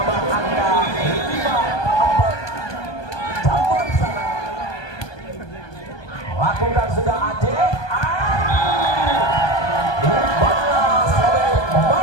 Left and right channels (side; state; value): right; late; 1.2 ms